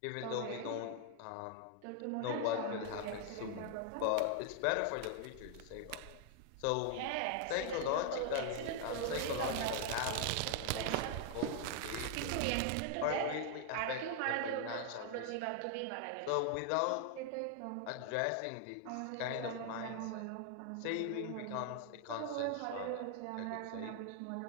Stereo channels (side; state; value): both; different; correlation 0.00